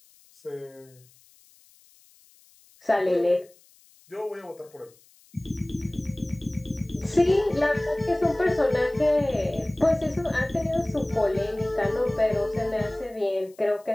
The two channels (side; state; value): left; noise; hiss, 29 dB below the sound